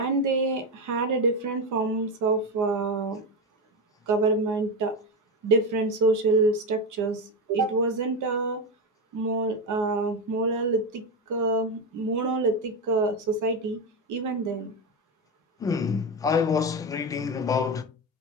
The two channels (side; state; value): both; normal; correlation 0.14